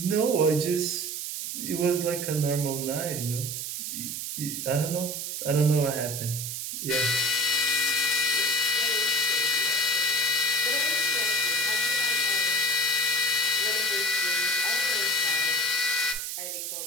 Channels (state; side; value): noise; right; hiss, 4 dB below the sound